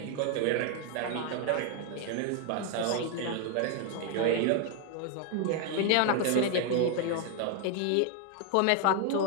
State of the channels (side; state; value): both; different; correlation 0.00